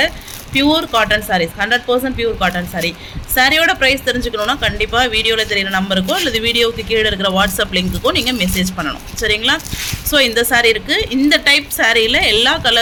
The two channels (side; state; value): both; identical; correlation 1.00